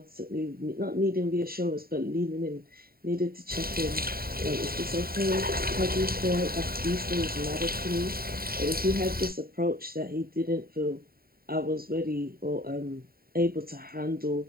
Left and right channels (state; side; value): late; left; 0.43 ms